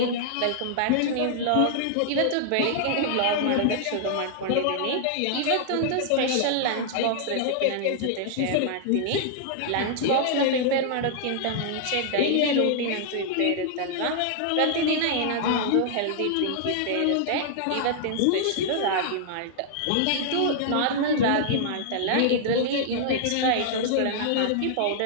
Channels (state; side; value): different; both; correlation -0.01